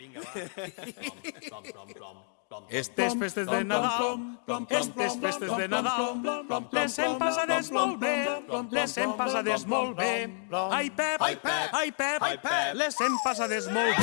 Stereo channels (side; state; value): right; silent; 58 dB below the other